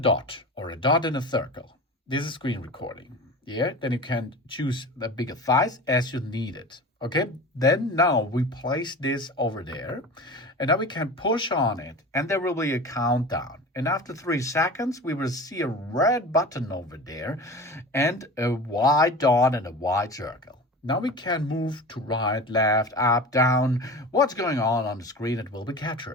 or a dot in a circle. This is screen recording. Yeah, then you can choose the bigger size as you need it. Okay, then now we place this over there, and now we can push on it, and there will be a countdown. And after 3 seconds, we will see a red button over there and a white dot and a white circle. Now we can move to right, left, up, down. What's going on the screen, it will be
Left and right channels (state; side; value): normal; both; correlation 0.34